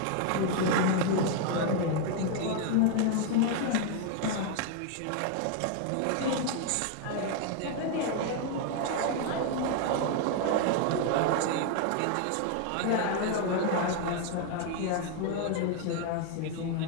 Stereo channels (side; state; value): both; different; correlation 0.01